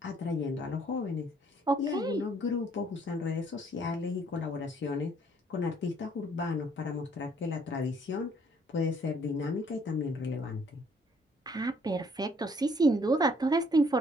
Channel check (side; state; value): both; normal; correlation 0.63